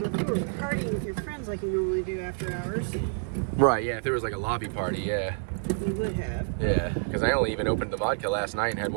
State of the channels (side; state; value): left; silent; digital silence